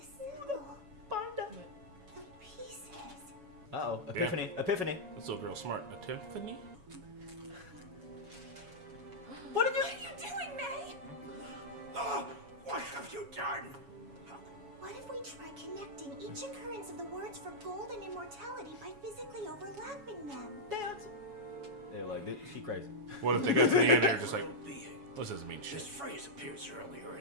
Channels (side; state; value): left; late; 7.1 ms